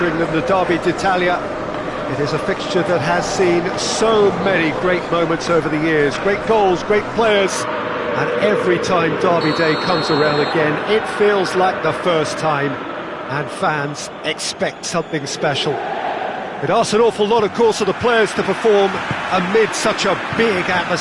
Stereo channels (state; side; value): identical; both; correlation 1.00